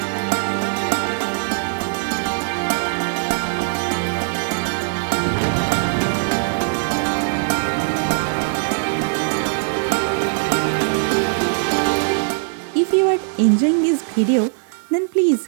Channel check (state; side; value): silent; left; 65 dB below the other